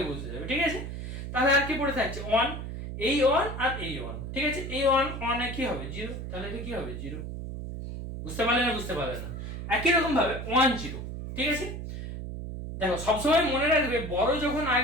বসে যাবে, ঠিক আছে। তাহলে আর কি পড়ে থাকছে 1, এই 1 আর এই 1, ঠিক আছে, এই 1 1 এ কি হবে 0, তাহলে এটা কি হবে 0, বুঝতে পারলে না, বুঝতে পারলে না। একই রকম ভাবে 1 0, ঠিক আছে, দেখো সবসময় মনে রাখবে বড় যখন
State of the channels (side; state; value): right; noise; hum, 7 dB below the sound